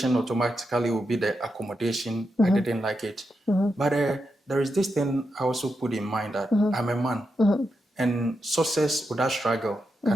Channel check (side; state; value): both; normal; correlation 0.86